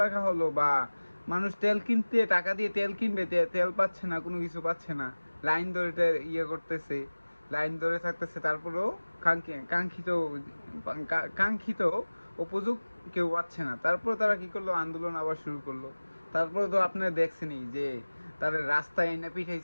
টাকা হলো, বা মানুষ তেল কিনতে টাকা দিয়ে তেল কিনবে, তেল পাচ্ছে না, কোনো কিছু পাচ্ছে না, লাইন ধরে করতেছে, লাইন ধরে থাকতেছে, তারপরেও কাঙ্ক্ষিত কাঙ্ক্ষিত উপযোগ কেউ পাচ্ছে না। তারপর তারা কি করলো, আন্দোলন আবার শুরু করলো। তারপরে তো আপনি দেখছেনই যে তারা রাস্তায় এনে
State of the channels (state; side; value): inverted; both; correlation -1.00